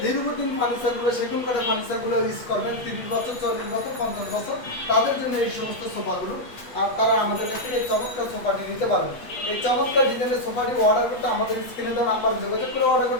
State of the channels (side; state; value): right; late; 8.3 ms